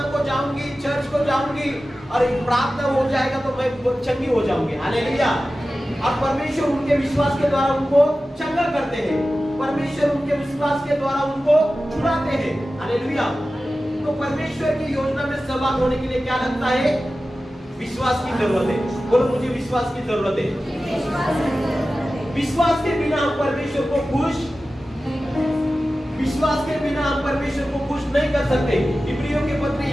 को जाऊंगी, चर्च को जाऊंगी और प्रार्थना हो जाएगा तो मैं चंगी हो जाऊंगी। हालेलुया। और परमेश्वर उनके विश्वास के द्वारा उनको चंगा करते हैं, परमेश्वर उनके विश्वास के द्वारा उनको छुड़ाते हैं। हालेलुया। तो परमेश्वर की योजना में सहभागी होने के लिए क्या लगता है? विश्वास की जरूरत है। बोलो मुझे विश्वास की जरूरत है। विश्वास के बिना हम परमेश्वर को खुश विश्वास के बिना हम परमेश्वर को खुश नहीं कर सकते। इब्रियों के पत्र,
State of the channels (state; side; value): normal; both; correlation 0.95